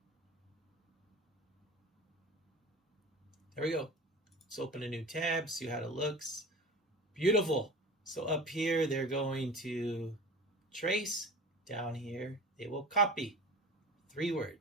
There we go. Let's open a new tab, see how it looks. Beautiful. So up here, they're going to trace. Down here, they will copy. 3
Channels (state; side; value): normal; both; correlation 0.37